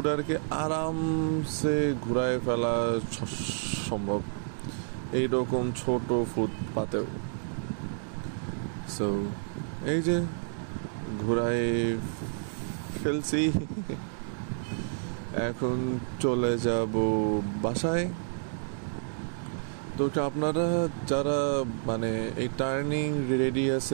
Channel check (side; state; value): left; silent; digital silence